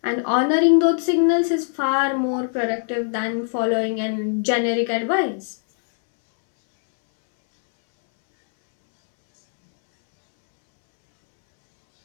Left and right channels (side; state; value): right; silent; 65 dB below the other